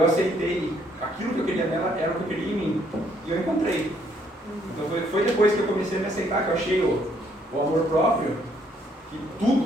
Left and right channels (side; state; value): both; normal; correlation 0.68